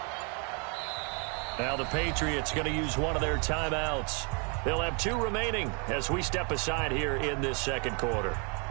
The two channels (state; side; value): quieter; left; 35.4 dB